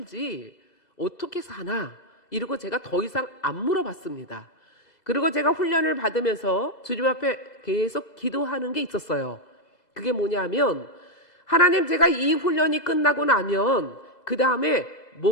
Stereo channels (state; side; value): late; right; 2.7 ms